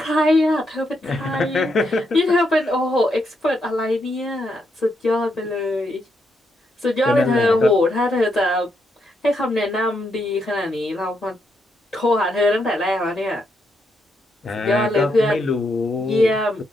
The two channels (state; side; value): normal; both; correlation 0.79